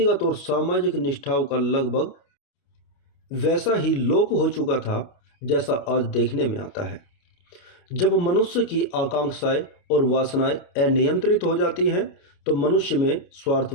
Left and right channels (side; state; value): right; late; 29 ms